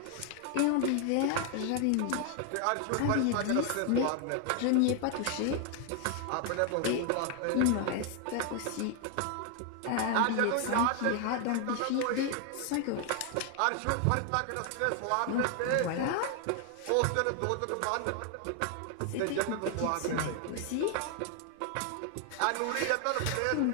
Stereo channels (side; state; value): both; different; correlation 0.00